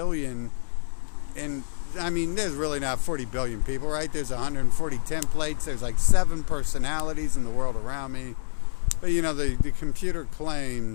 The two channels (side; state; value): right; silent; digital silence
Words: and I mean, there's really not 40 billion people, right? There's 140 templates. There's like 7 personalities in the world around me. But you know, the computer